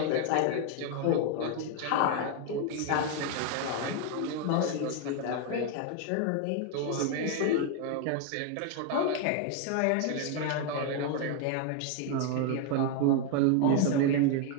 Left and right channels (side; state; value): both; different; correlation 0.01